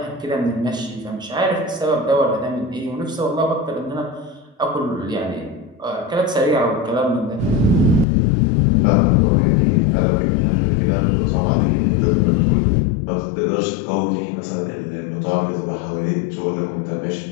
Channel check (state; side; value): drops out; right; at 8.1 s